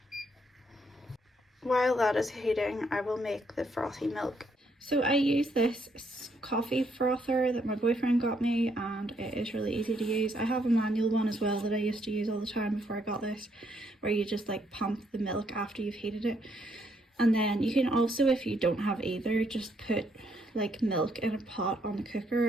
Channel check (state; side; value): normal; both; correlation 0.73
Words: While that is heating, I will make the frothy milk. So I use this coffee frother that my boyfriend got me, and it is really easy to use. I have a manual one as well that I used to use all the time before I got this, where you just like pump the milk after you've heated it. And then you can also, if you don't have either, just put like milk in a pot on the cooker